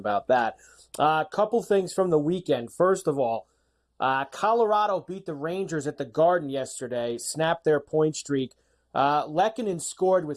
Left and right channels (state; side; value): identical; both; correlation 1.00